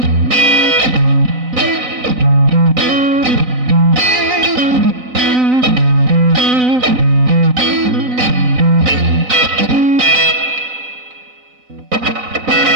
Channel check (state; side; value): late; left; 4.0 ms